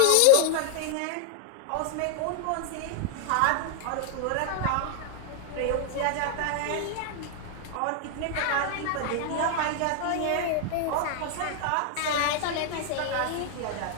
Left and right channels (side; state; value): both; different; correlation 0.00